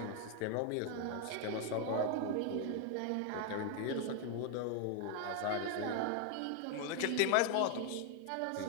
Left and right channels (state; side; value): different; both; correlation 0.00